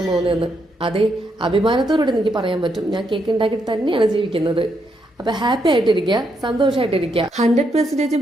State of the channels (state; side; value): normal; both; correlation 0.78